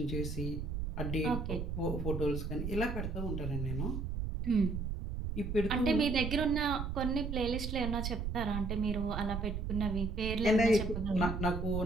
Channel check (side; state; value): right; noise; rumble, 3 dB below the sound